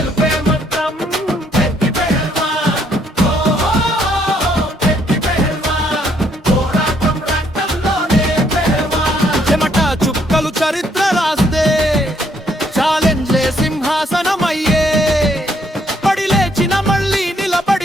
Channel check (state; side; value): normal; both; correlation 0.69